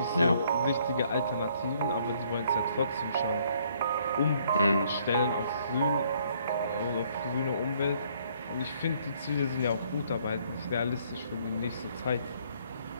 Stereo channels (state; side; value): inverted; both; correlation -0.65